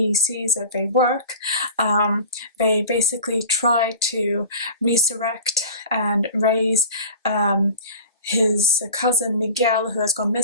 sees that they work, they basically try to resurrect and raise his cousin Miguel, who has gone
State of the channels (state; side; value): inverted; both; correlation -0.38